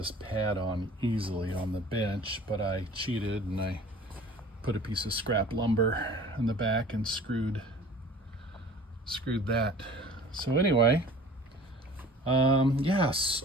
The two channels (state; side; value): normal; both; correlation 0.46